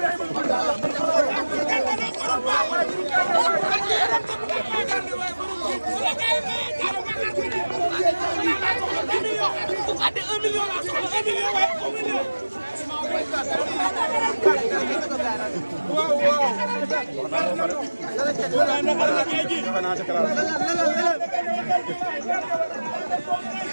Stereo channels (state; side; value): inverted; both; correlation -1.00